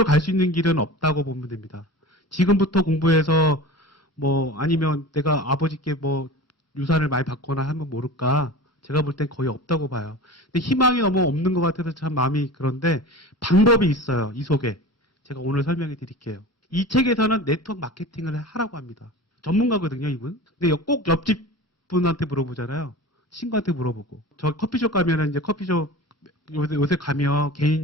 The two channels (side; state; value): both; normal; correlation 0.34